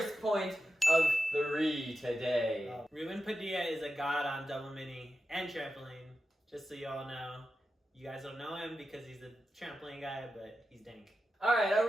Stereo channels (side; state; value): both; normal; correlation 0.90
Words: point of 3 today. Ruben Padilla is a god on double mini and trampoline. Just so you all know. You guys don't know him because he's a trampoline guy, but he's dank. Alright, are